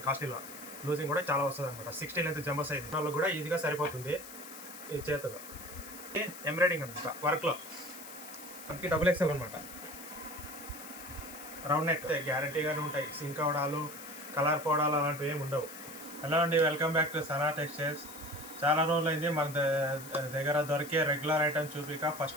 కాస్ట్లీలో లూజింగ్ కూడా చాలా వస్తుంది అనమాట. 60 లెంత్ జంబో సైజ్ వాళ్ళకి కూడా ఈజీగా సరిపోతుంది. ఈ చేతులు ఎంబ్రాయిడింగ్ అనమాట, వర్క్లో మనకి డబుల్ ఎక్సెల్ అనమాట. రౌండ్ నెక్ గ్యారంటీగానే ఉంటాయి, సింక్ అవడాలు కలర్ పోవడాలు అలాంటివి ఏమి ఉండవు. హలో అండి, welcome back to Sana textiles. చాలా రోజులు అయింది మన దగ్గర దొరికే రెగ్యులర్ ఐటమ్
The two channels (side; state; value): left; noise; hiss, 14 dB below the sound